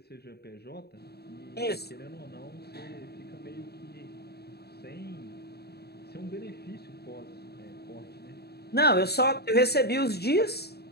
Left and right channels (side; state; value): right; late; 0.47 ms